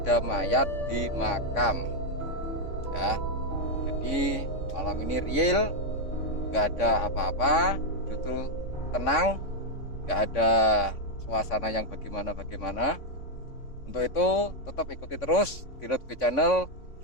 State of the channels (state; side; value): late; right; 3.5 ms